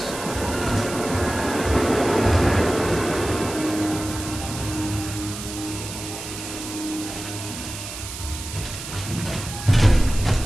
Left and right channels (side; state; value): right; noise; hiss, 9 dB below the sound